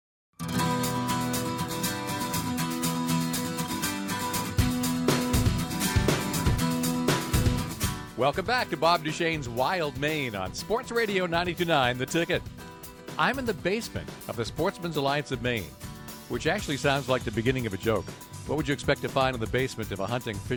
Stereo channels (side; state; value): both; identical; correlation 1.00